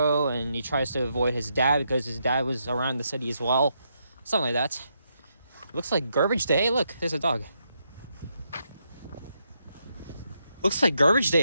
and he tries to avoid his dad because his dad was around the city as well. Something like that. Looks like garbage day. Hey, look, there's a dog. Looks like garbage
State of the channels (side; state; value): both; inverted; correlation -0.79